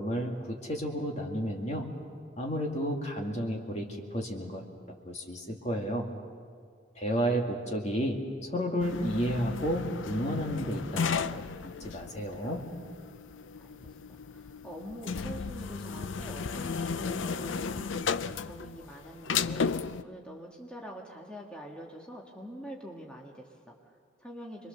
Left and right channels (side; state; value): both; normal; correlation 0.47